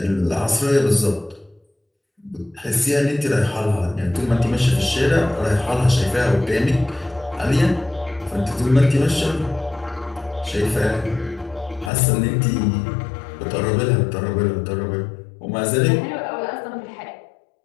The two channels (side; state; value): right; drops out; at 11.9 s